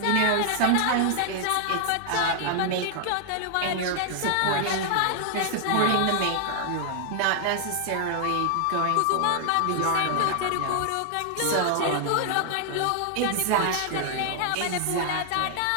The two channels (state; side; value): different; both; correlation 0.00